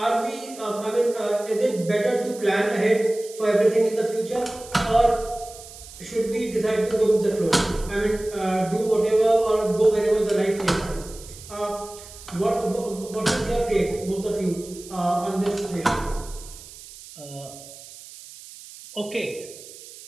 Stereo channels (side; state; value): right; noise; hiss, 17 dB below the sound